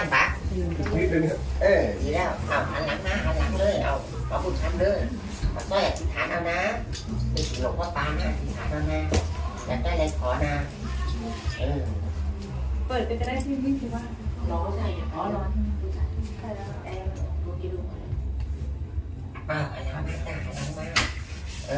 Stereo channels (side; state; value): both; identical; correlation 1.00